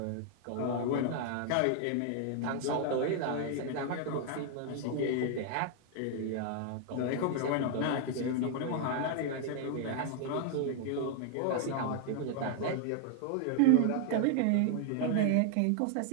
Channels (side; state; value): both; different; correlation 0.00